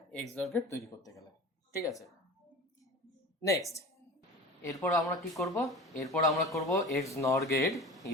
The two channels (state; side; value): normal; both; correlation 0.35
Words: XOR গেট তৈরি করতে গেলে। ঠিক আছে, নেক্সট এরপর আমরা কি করব? এরপর আমরা করব XNOR gate